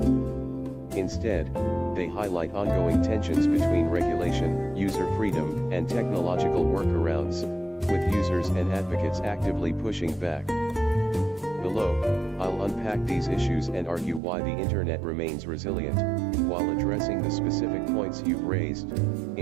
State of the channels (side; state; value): left; drops out; at 14.2 s